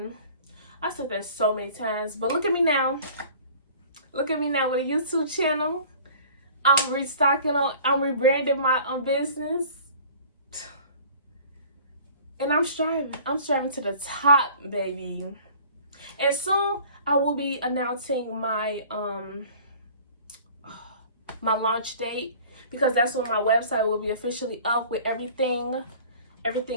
I said that so many times, but look at me now. Look at me now with a YouTube channel. I'm rebranding my business. And I'm striving. I'm striving to the top, baby. And soon I will be announcing my my launch date, because that's when my website will be officially up with everything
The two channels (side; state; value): both; inverted; correlation -0.47